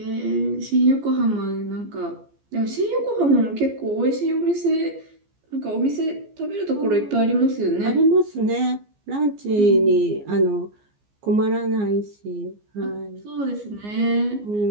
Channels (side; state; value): left; late; 14 ms